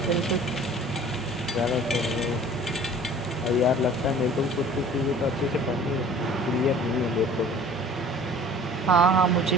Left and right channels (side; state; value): both; normal; correlation 0.47